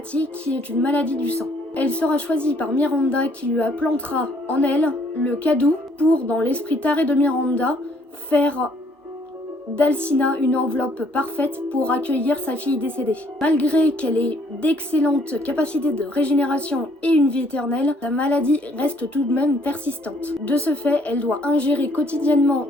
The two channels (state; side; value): normal; both; correlation 0.64